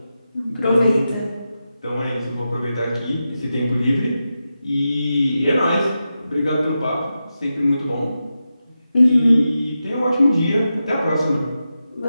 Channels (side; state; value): both; inverted; correlation -0.90